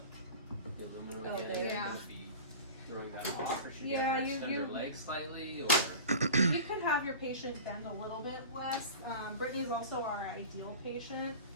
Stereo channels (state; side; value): inverted; both; correlation -0.35